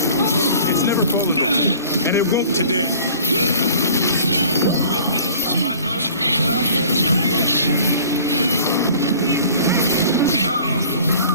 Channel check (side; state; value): both; inverted; correlation -0.48